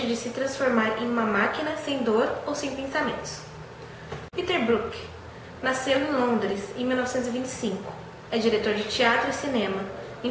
de se transformar em uma máquina sem dor ou sem pensamentos. Peter Brook. Nasceu em Londres em 1925. É diretor de teatro e cinema.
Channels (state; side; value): identical; both; correlation 1.00